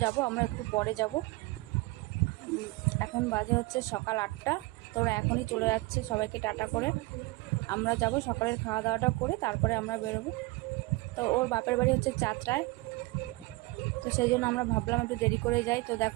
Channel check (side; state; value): left; quieter; 22.5 dB